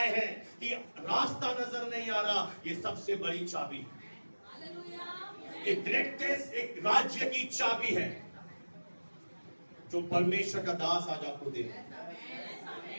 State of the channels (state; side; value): inverted; both; correlation -1.00